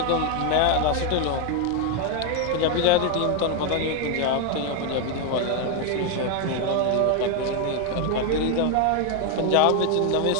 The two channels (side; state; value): both; different; correlation 0.01